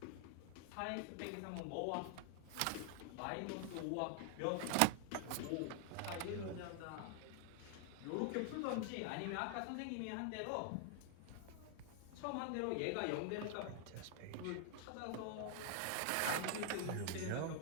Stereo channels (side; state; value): both; different; correlation 0.00